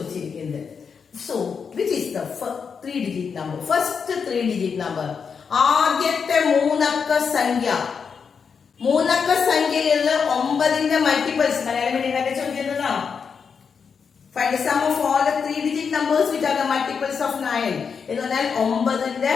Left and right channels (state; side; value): quieter; right; 6.1 dB